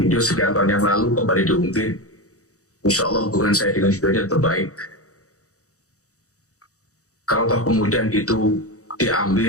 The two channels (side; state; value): right; late; 0.65 ms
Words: sekian tahun yang lalu kembali diunggah. Insya Allah hubungan saya dengan videonya terbaik. Kalau toh kemudian itu